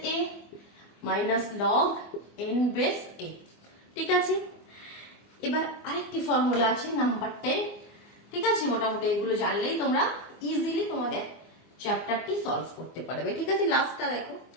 a minus log n base a। ঠিক আছে, এবার আরেকটি ফর্মুলা আছে নাম্বার 10। ঠিক আছে, মোটামুটি এগুলো জানলেই তোমরা ইজিলি তোমাদের চ্যাপ্টারটি সলভ করতে পারবে। ঠিক আছে, লাস্টটা দেখো,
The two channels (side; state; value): right; late; 24 ms